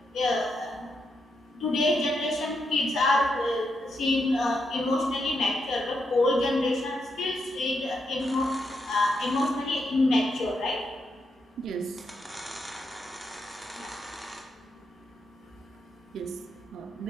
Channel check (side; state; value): both; normal; correlation 0.82